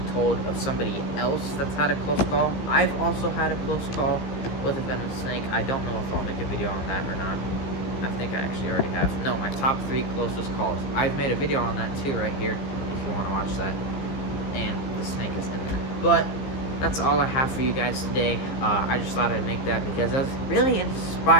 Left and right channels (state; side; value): late; right; 15 ms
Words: told of somebody else that's had a close call. I've also had a close call with a venomous snake. I don't know if I'll make a video on that or not. I think I actually already have. No, my top 3 closest calls. I've made a video on that too right here, if you want to watch that. And the snake is in there. But that's all I have for you guys today. I just thought I'd make that because it was really